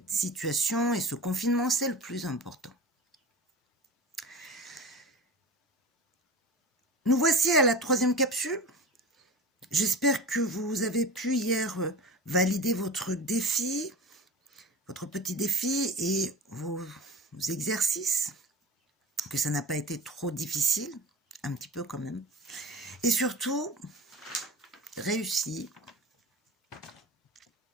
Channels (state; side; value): normal; both; correlation 0.32